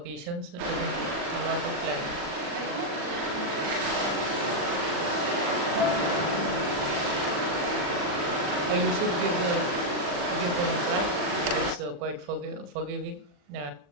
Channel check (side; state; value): left; late; 40 ms